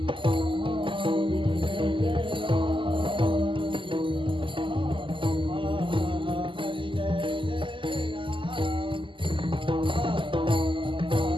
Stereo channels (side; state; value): left; late; 0.25 ms